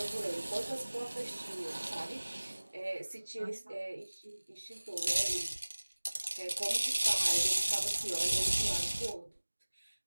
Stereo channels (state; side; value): inverted; both; correlation -1.00